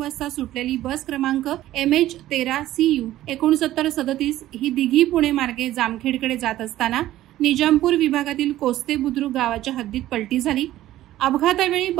वाजता सुटलेली बस क्रमांक MH13CU 6937 ही दिघी पुणे मार्गे जामखेडकडे जात असताना निजामपूर विभागातील कोस्ते बुद्रुक गावाच्या हद्दीत पलटी झाली। अपघातावेळी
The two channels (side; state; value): left; quieter; 14.3 dB